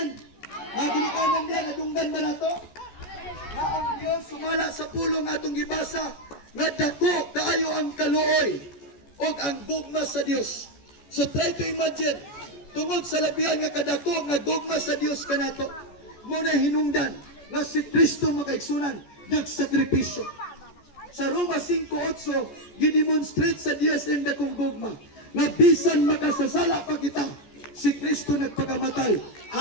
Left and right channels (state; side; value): late; right; 14 ms